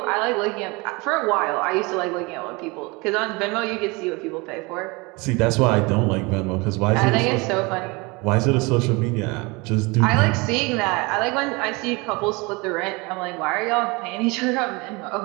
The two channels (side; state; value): left; quieter; 26.2 dB